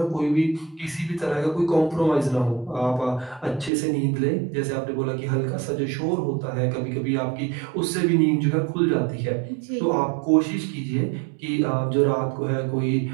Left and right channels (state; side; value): drops out; left; at 3.7 s